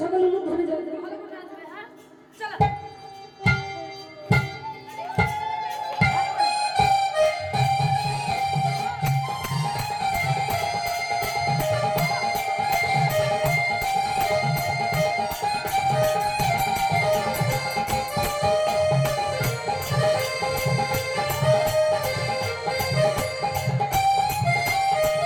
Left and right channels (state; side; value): identical; both; correlation 1.00